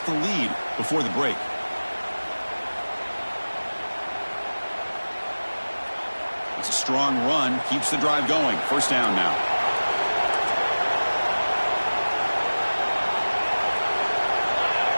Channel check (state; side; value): inverted; both; correlation -1.00